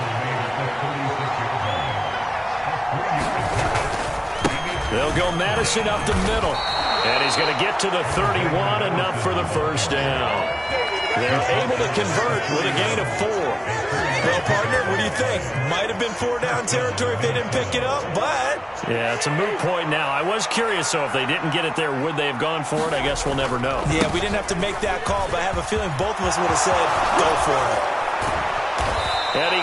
They'll go Madison up the middle. And he's going to get to the 31, enough for the first down. They're able to convert with a gain of 4. Well, partner, what do you think? Might have been 4-down territory if they didn't pick it up, but... Yeah, it's a moot point now. I was curious, so if they didn't get it there, would they have gone for it? I guess we'll never know. Yeah, we didn't have to make that call, but I have a feeling both of us would have said, go for it. And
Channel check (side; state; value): both; identical; correlation 1.00